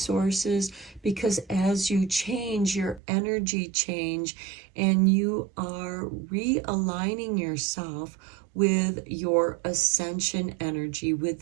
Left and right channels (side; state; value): left; drops out; at 3.0 s